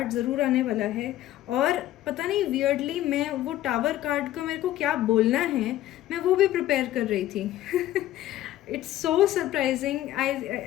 ज़रूर आने वाला है. और पता नहीं वियर्डली मैं वो टावर कार्ड को, मेरे को क्या बोलना है, मैं वो भी प्रिपेयर कर रही थी. It's so surprising.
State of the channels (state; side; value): quieter; right; 13.9 dB